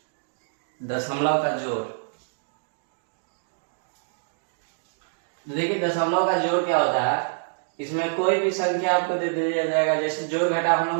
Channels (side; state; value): left; silent; digital silence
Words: दशमलव का जोड़। देखिए दशमलव का जोड़ क्या होता है। इसमें कोई भी संख्या आपको दे दिया जाएगा। जैसे जोड़ घटाव हम